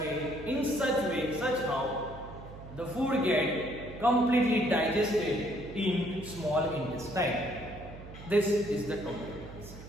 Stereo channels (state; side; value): noise; right; hum, 15 dB below the sound